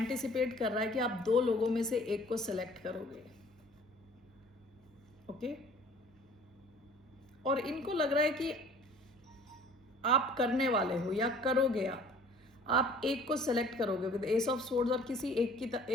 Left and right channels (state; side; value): normal; both; correlation 0.51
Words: कर रहा है कि आप दो लोगों में से एक को सिलेक्ट करोगे। ओके, और इनको लग रहा है कि आप करने वाले हो या करोगे, आप एक को सेलेक्ट करोगे विद एस ऑफ सोर्ड्स और किसी